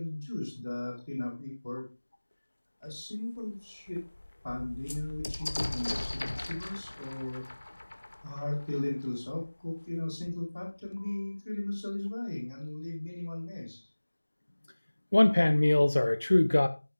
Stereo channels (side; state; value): both; inverted; correlation -1.00